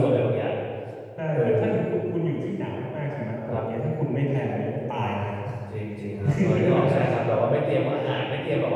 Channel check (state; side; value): identical; both; correlation 1.00